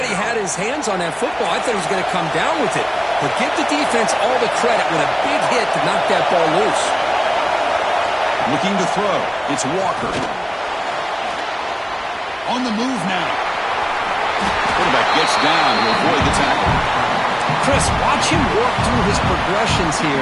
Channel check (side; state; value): both; identical; correlation 1.00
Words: he had his hands on that football. I thought he was going to come down with it. But give the defense all the credit with a big hit to knock that ball loose. Looking to throw. It's Walker. On the move now. Quarterback gets down to avoid the tackle. Chris, watch him work through his progressions